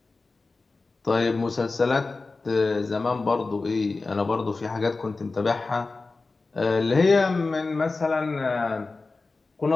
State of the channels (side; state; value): right; quieter; 3.7 dB